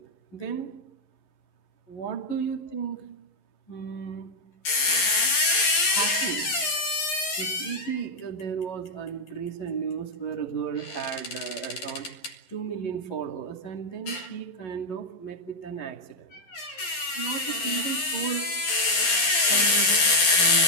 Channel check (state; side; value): late; right; 11 ms